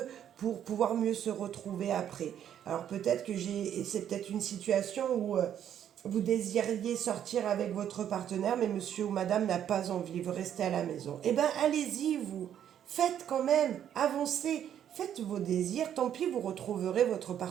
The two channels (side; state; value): left; quieter; 9.9 dB